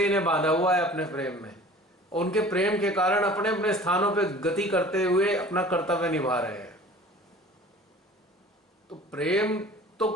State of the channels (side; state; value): both; normal; correlation 0.45